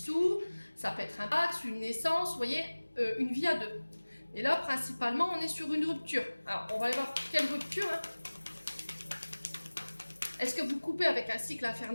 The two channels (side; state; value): both; inverted; correlation -1.00